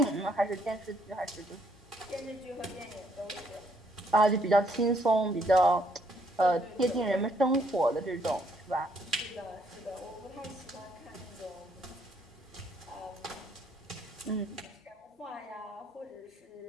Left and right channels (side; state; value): both; normal; correlation 0.69